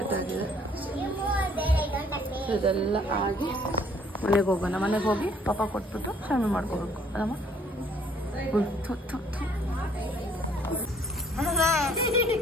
ಆಗಿದೆ. ಇದೆಲ್ಲ ಆಗಿ ಮನೆಗೆ ಹೋಗೋಣ. ಮನೆಗೆ ಹೋಗಿ ಪಾಪ ಕೊಟ್ಬಿಟ್ಟು ಶಾಮಿ ಮಾಡ್ಕೋಬೇಕು ಅದಮ್ಮ.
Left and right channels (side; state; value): both; normal; correlation 0.61